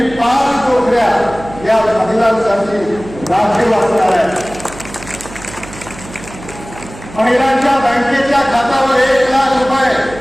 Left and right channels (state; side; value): noise; right; hum, 16 dB below the sound